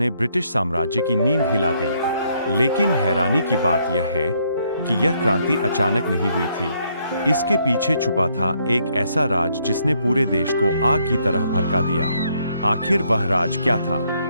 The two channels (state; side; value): inverted; both; correlation -0.71